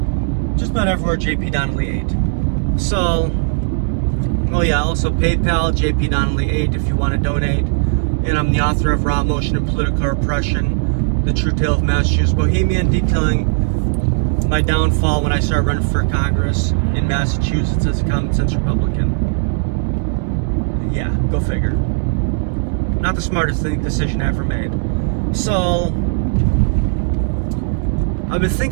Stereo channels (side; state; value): left; silent; digital silence